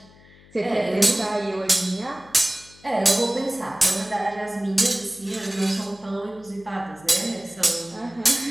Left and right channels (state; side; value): noise; left; hum, 25 dB below the sound